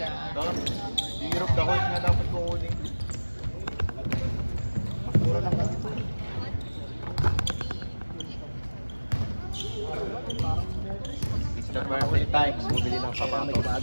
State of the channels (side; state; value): both; inverted; correlation -1.00